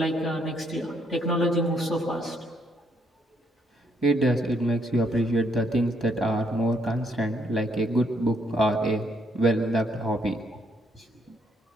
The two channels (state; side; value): normal; both; correlation 0.72